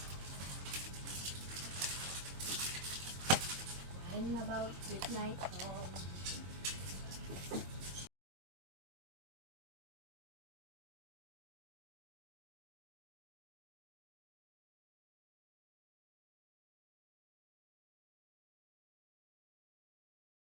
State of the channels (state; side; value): late; left; 22 ms